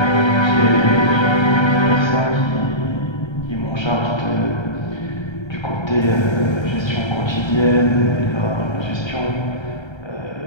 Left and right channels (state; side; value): late; right; 1.3 ms